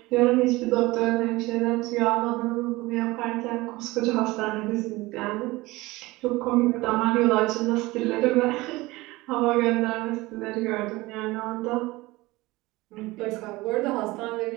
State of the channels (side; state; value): left; quieter; 20.7 dB